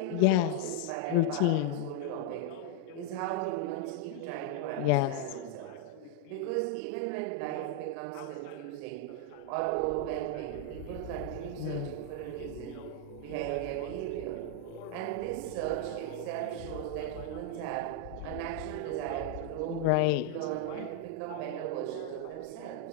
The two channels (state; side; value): different; both; correlation 0.00